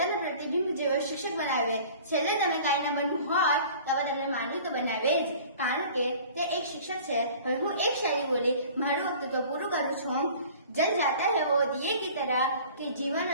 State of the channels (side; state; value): both; inverted; correlation -0.46